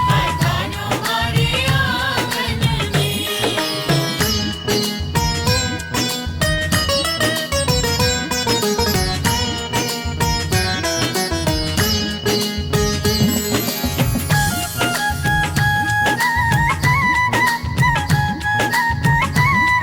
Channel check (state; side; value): identical; both; correlation 1.00